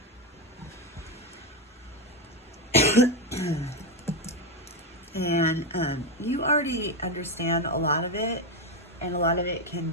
And you already understand a lot of it, and a lot of it can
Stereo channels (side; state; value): both; normal; correlation 0.09